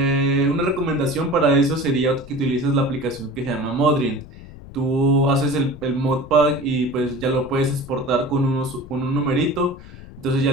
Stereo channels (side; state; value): left; noise; rumble, 17 dB below the sound